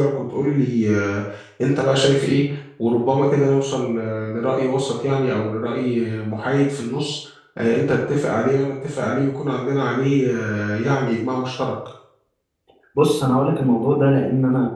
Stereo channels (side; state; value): both; identical; correlation 1.00